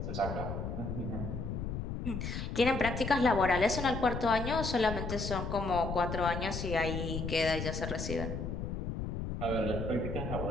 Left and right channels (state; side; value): noise; left; rumble, 4 dB below the sound